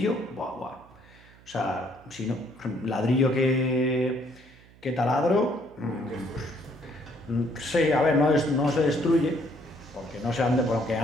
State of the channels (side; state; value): right; noise; hum, 25 dB below the sound